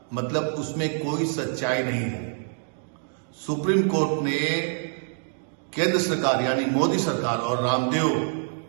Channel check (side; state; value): left; silent; digital silence